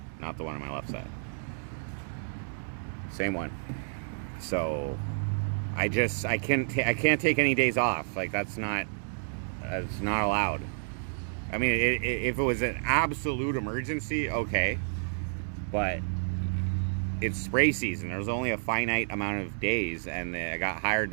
not the one on my left side. Same one. So I can't take any days off. Like it's not allowed. I mean, if it was an absolute emergency, okay. But it's spray season. There's only a finite amount of days, and I got hired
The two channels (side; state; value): left; silent; digital silence